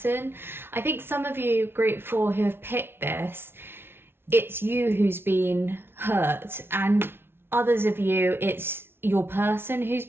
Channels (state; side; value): late; left; 0.11 ms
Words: I think some of you, group 4, who have picked this, it's you who's been hurt, and others of you, it's your person who's